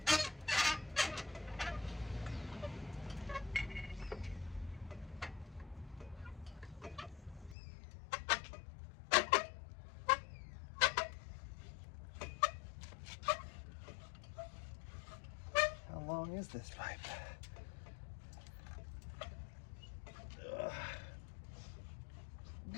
How long is this pipe? Ugh.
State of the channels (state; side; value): drops out; right; at 7.6 s